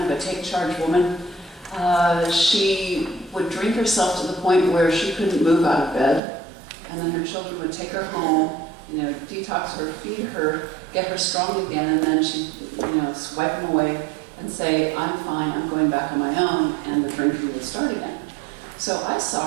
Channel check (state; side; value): drops out; left; at 6.2 s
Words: of a take-charge woman. She would drink herself to the point where she couldn't move out of bed, and then her children would take her home, detox her, feed her, get her strong again, and then she'd, swipe them away and say, I'm fine, I'm going back on my own, and the drinking would start again. So I